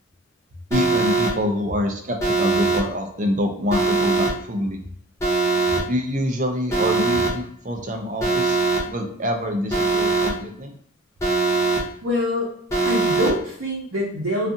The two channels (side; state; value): both; normal; correlation 0.45